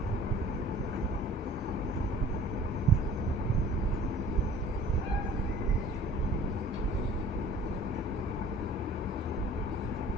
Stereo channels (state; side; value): normal; both; correlation 0.49